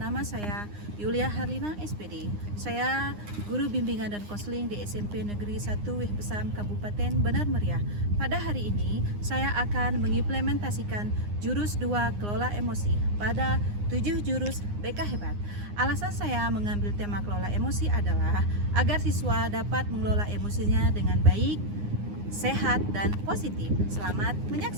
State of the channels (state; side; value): late; left; 9.8 ms